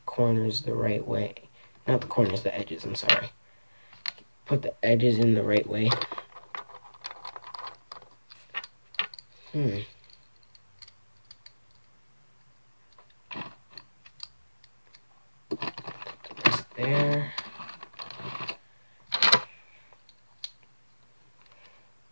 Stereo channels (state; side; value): inverted; both; correlation -1.00